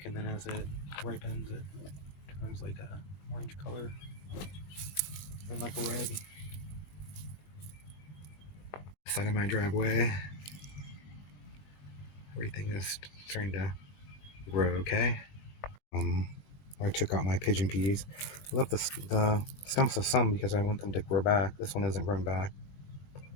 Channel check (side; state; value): right; late; 21 ms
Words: and then as it ripens, it turns like a orange color, and like a red. Side of my driveway, everything is starting to grow okay. I took out my pigeon peas. I left the stumps of some because I want them to grow back. This one isn't growing back,